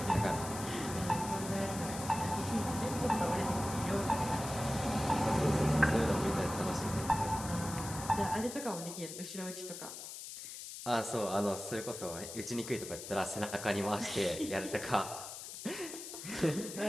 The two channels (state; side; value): noise; left; hiss, 10 dB below the sound